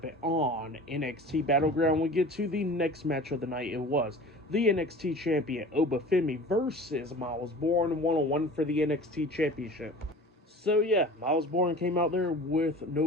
on NXT Battleground, we get to the next match of the night. It was the NXT Champion, Obafemi, versus Miles Bourne, one-on-one for the NXT Championship. So yeah, Miles Bourne came out there with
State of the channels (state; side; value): normal; both; correlation 0.40